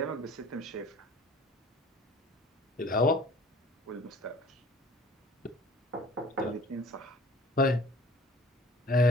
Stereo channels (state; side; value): normal; both; correlation 0.50